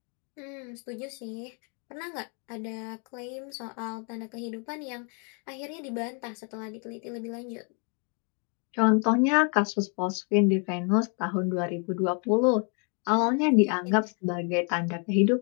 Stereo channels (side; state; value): right; quieter; 37.7 dB